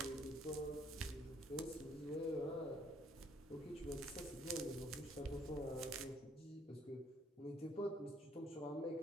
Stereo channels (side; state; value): both; normal; correlation 0.65